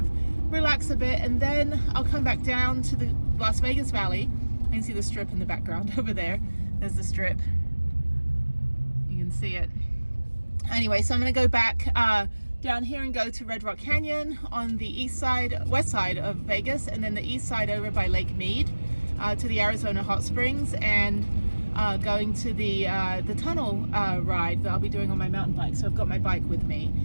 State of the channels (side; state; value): both; inverted; correlation -1.00